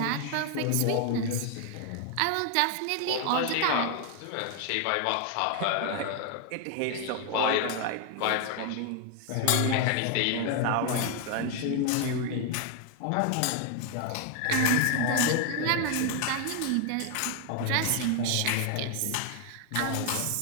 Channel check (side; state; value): both; different; correlation 0.01